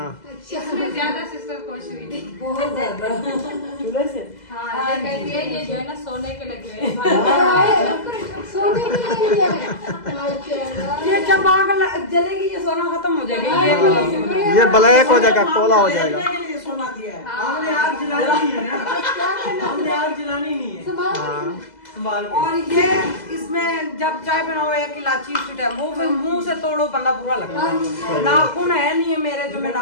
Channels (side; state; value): right; late; 2.0 ms